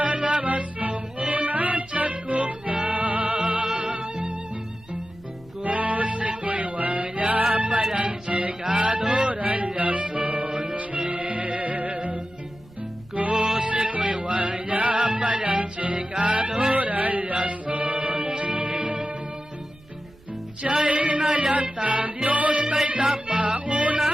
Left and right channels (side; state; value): right; noise; rumble, 25 dB below the sound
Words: song unang tiyakuk na. Kusi ko'y wanya palang chikadoran yason chin. Kusi ko'y wanya palang chikadoran yason chin. Chay na yata Diyos kay